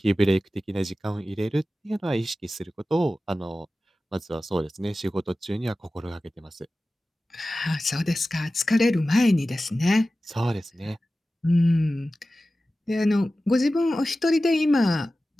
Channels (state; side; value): normal; both; correlation 0.95